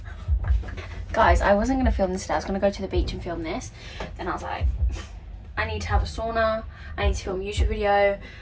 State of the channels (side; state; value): both; identical; correlation 1.00